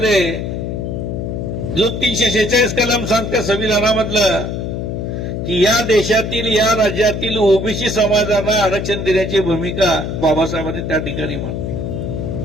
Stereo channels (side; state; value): left; noise; hum, 4 dB below the sound